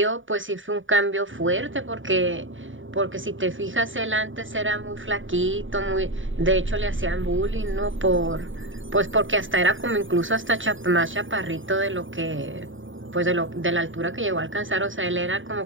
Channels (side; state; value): left; late; 0.57 ms